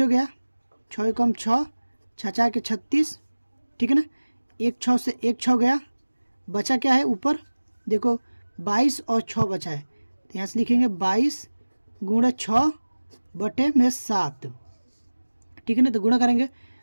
गया, 6 कम 6, 6 के 36, ठीक है ना, 1 6 से 1 6 गया, बचा क्या है ऊपर देखो 22 और 6 बचा है, तो यहाँ से लिखेंगे 22 गुणा 6 बटे में 7, ठीक है ना। तो गुणा करेंगे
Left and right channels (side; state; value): both; inverted; correlation -1.00